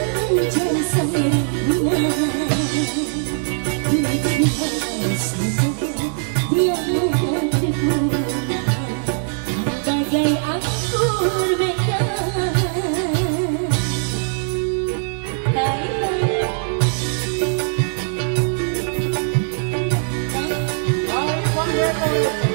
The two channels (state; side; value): silent; left; digital silence